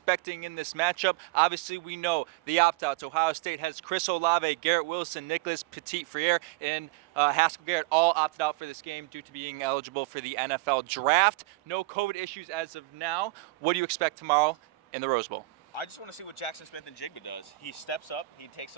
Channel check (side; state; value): left; quieter; 20.4 dB